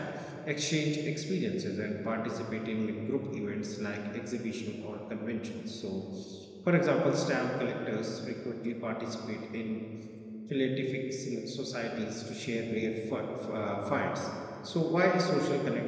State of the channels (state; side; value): identical; both; correlation 1.00